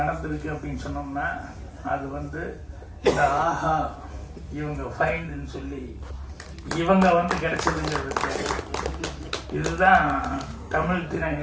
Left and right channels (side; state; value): both; identical; correlation 1.00